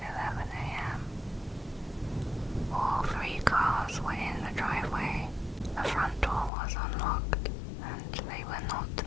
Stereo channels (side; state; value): right; drops out; at 6.5 s